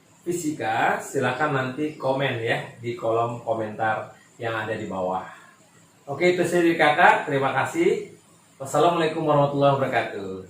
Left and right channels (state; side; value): identical; both; correlation 1.00